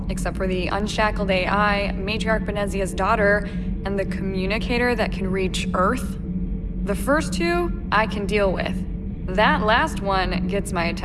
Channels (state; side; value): identical; both; correlation 1.00